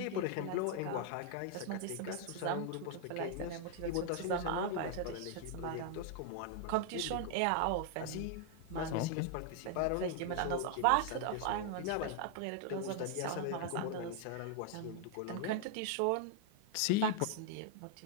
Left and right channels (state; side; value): different; both; correlation 0.00